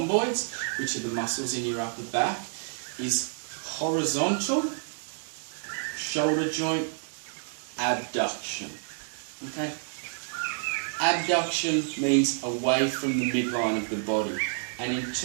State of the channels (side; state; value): left; silent; digital silence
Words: which are the muscles in your upper back, is horizontal shoulder joint abduction. Okay? Abduction means away from the midline of the body, and in